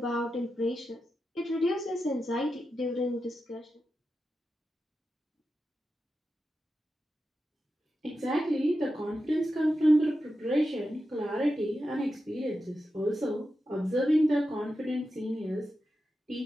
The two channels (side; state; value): both; normal; correlation 0.90